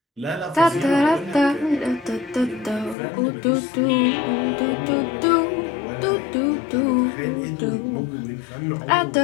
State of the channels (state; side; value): drops out; right; at 3.0 s